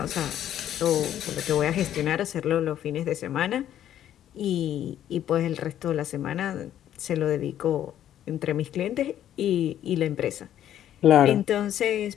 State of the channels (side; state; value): right; quieter; 11.1 dB